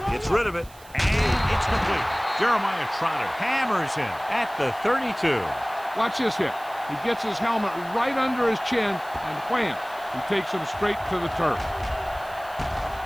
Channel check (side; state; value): right; noise; hiss, 22 dB below the sound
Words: gets rid of it, and it's complete. Jeremiah Trotter hammers him at the 32. Watch this hit. He gets his helmet right under his chin, and wham, he takes him straight to the turf.